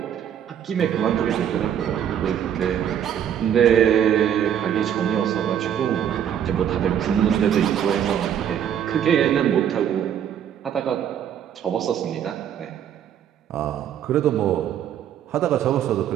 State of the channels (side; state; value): left; quieter; 9.4 dB